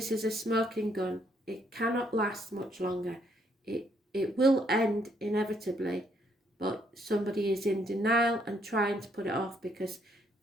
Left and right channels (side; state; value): both; normal; correlation 0.70